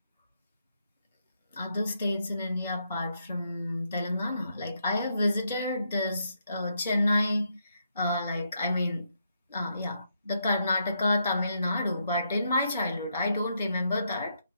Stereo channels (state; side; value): inverted; both; correlation -0.78